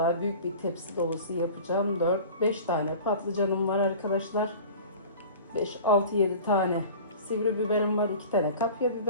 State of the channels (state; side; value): inverted; both; correlation -0.40